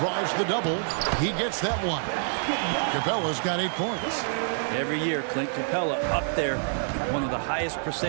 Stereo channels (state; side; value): silent; left; 60 dB below the other